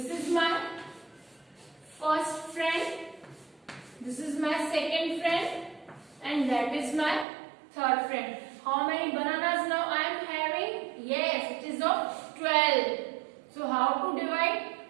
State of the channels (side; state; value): left; drops out; at 7.2 s